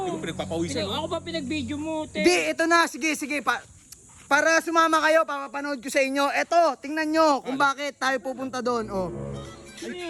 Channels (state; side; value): identical; both; correlation 1.00